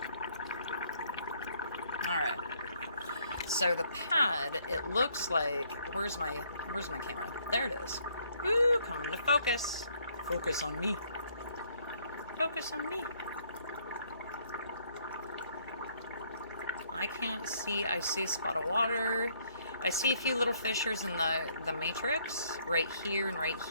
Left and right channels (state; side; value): inverted; both; correlation -0.66